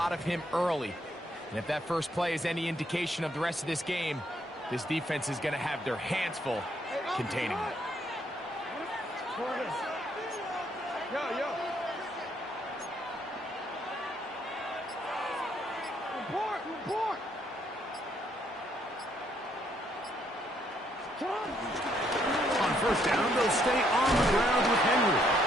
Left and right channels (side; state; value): both; normal; correlation 0.71